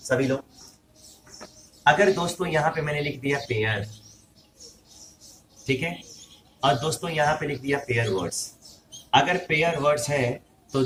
लोग। अगर दोस्तों यहाँ पे मैंने लिख दिया पेयर, ठीक है, और दोस्तों यहाँ पे लिख दिया पेयर वर्ड्स, अगर पेयर वर्ड्स है तो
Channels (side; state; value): both; identical; correlation 1.00